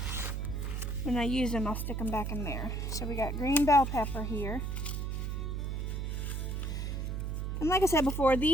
when I use them I'll stick them back in there. So we got green bell pepper here. And like I said before,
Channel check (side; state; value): right; noise; hum, 2 dB below the sound